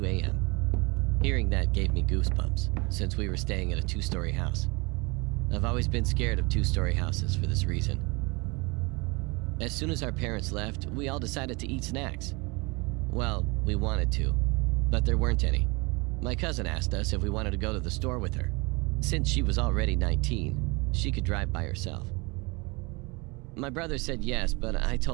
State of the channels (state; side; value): quieter; left; 27.2 dB